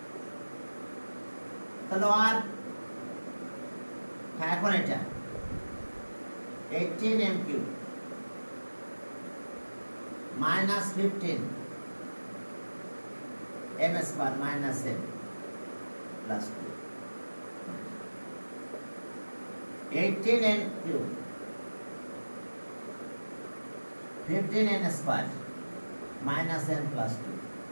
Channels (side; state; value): both; inverted; correlation -1.00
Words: তাহলে আর হ্যাঁ এখন এটা 18m cube minus 15 m square minus m plus 2 18n cube 15n square minus n plus 2